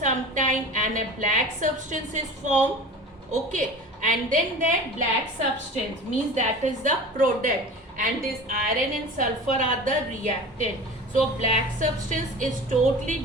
time and a black substance is formed. Okay, and then that black substance means that is the product, and this iron and sulfur are the reactant. So black substance is totally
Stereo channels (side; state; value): both; normal; correlation 0.36